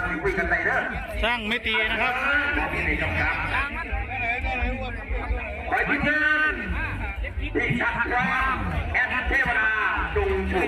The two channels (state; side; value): identical; both; correlation 1.00